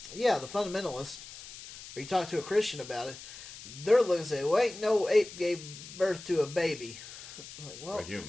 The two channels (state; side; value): noise; left; hiss, 14 dB below the sound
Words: fundamentalist, or you talk to a Christian about it, they're looking and say, "Well, ain't no ape gave birth to a baby." Like, well,